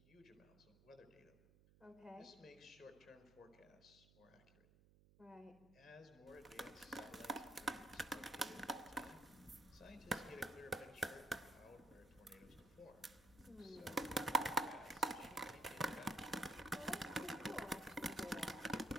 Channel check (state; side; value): noise; right; hum, 25 dB below the sound